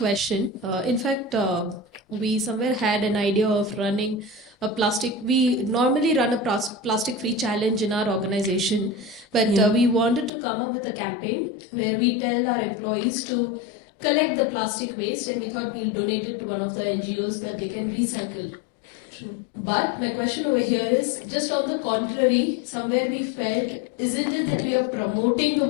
In fact, we somewhere had an idea of running a plastic. We normally run a plastic-free challenge in our organization, but we wanted to come up with a campaign where we tell our employees to collect the plastic waste, and we thought we'll donate it to one of the NGOs that they can recycle. True. But my question over here is just on the contrary, somewhere we felt, isn't it that we are promoting the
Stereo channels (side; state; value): right; drops out; at 10.3 s